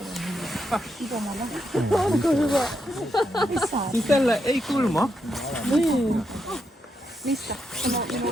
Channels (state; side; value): normal; both; correlation 0.82